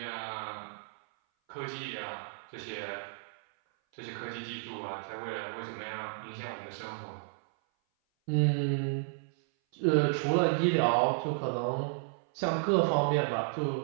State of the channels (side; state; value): left; silent; 56 dB below the other